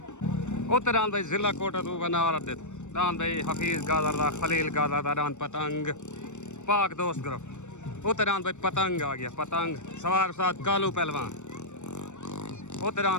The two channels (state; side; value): late; right; 0.84 ms